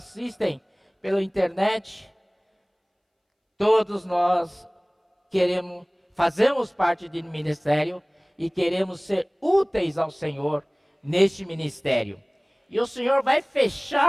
pela internet, todos nós fazemos parte do ministério e queremos ser úteis ao Senhor neste ministério. E o Senhor vai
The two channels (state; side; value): identical; both; correlation 1.00